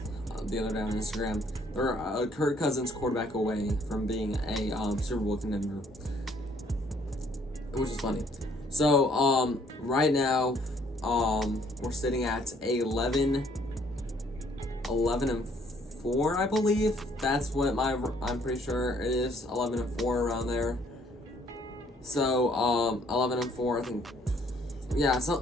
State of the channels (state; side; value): normal; both; correlation 0.64